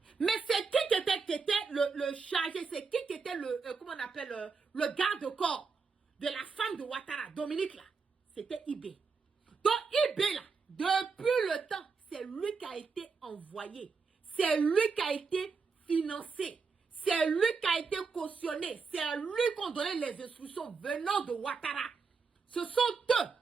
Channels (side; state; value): left; quieter; 5.0 dB